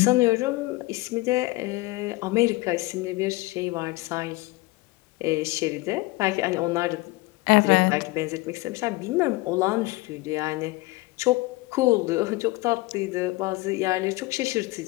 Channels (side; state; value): right; quieter; 21.3 dB